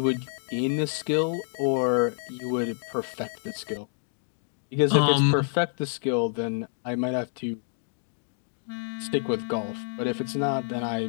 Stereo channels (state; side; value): silent; right; digital silence